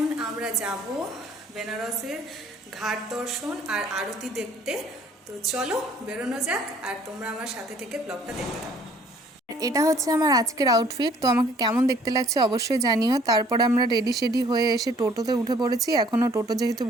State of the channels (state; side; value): normal; both; correlation 0.57